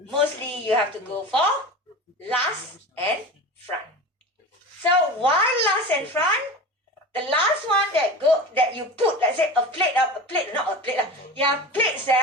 mostly you have to go for last and front. So why last and front? The last one that you put, let's say plates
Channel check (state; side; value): normal; both; correlation 0.32